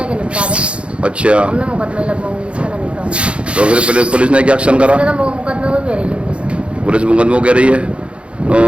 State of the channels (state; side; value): late; left; 0.059 ms